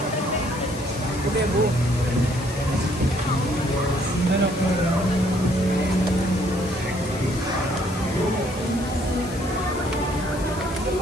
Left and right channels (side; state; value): left; noise; hiss, 16 dB below the sound